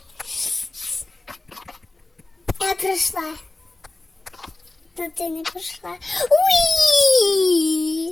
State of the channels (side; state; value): right; quieter; 3.1 dB